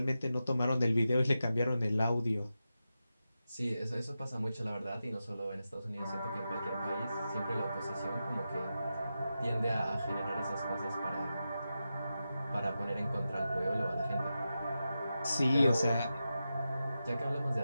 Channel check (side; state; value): both; inverted; correlation -0.90